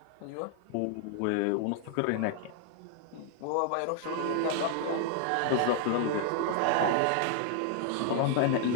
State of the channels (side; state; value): both; different; correlation 0.00